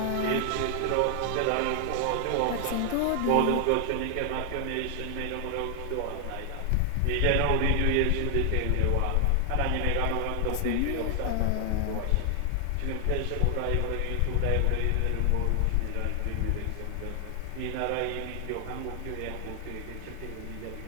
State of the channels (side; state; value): both; different; correlation 0.00